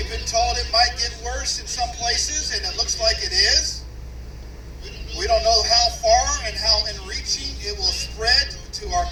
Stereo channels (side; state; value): both; identical; correlation 1.00